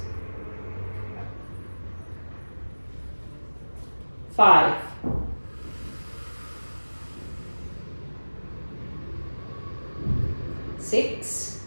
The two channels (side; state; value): both; inverted; correlation -1.00